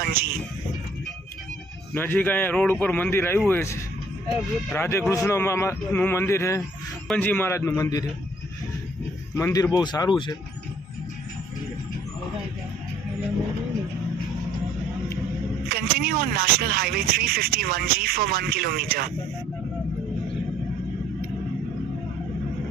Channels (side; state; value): both; normal; correlation 0.60